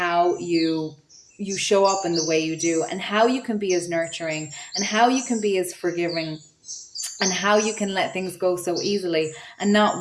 you show up in the way you do, and how you can be as nurturing, and how you can be as forgiving, and how you can let things go so easily and not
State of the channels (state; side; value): identical; both; correlation 1.00